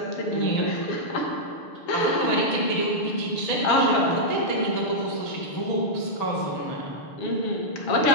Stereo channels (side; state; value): right; late; 6.7 ms